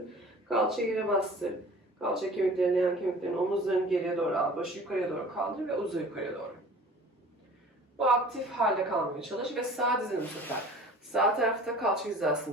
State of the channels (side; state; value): both; normal; correlation 0.45